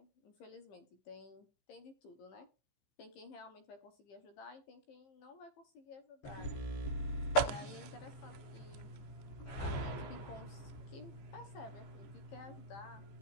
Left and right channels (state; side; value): late; right; 14 ms